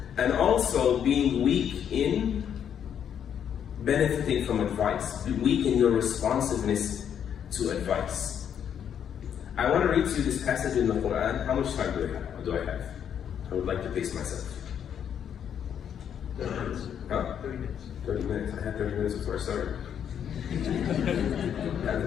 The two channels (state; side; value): quieter; right; 8.7 dB